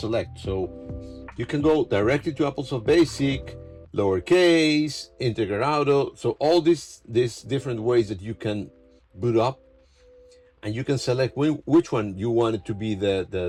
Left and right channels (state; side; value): identical; both; correlation 1.00